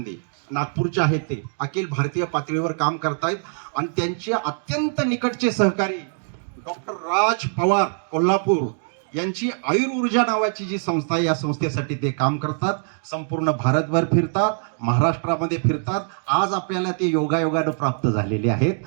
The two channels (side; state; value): left; silent; 63 dB below the other